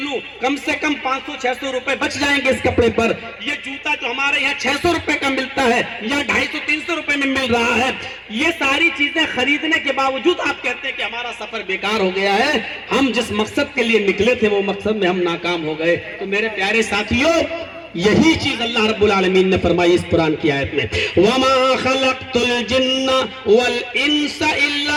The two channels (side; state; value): both; identical; correlation 1.00